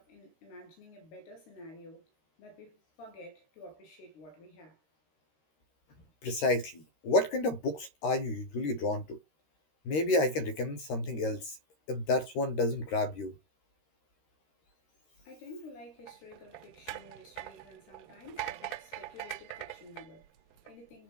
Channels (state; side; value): late; right; 13 ms